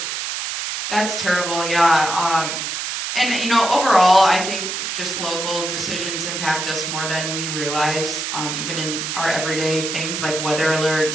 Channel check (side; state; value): right; noise; hiss, 4 dB below the sound